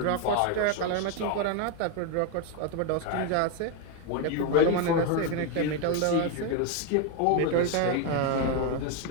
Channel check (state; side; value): different; both; correlation 0.01